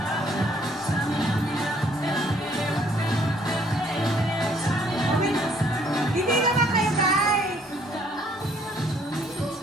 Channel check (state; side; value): normal; both; correlation 0.64